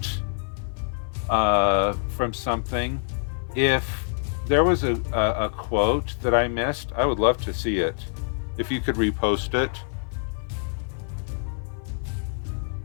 from something? If there was a quote that I missed, I would love to see it. If you could repost it.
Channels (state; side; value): silent; right; 55 dB below the other